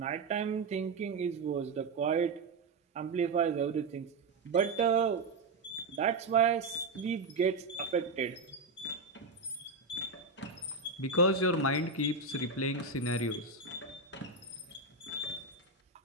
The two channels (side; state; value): left; quieter; 3.7 dB